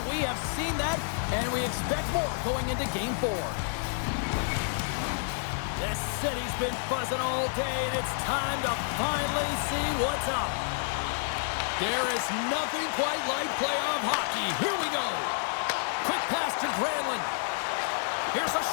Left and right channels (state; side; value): silent; right; digital silence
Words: we have seen that, and we expect more going into Game 4. The city's been buzzing all day, and it's time to finally see what's up. There is nothing quite like playoff hockey. Here we go. Quick pass to Granlund. Here's a